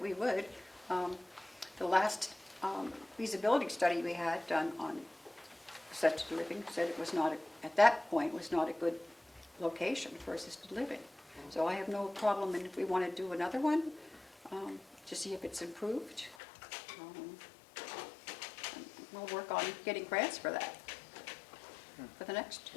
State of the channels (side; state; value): right; drops out; at 16.4 s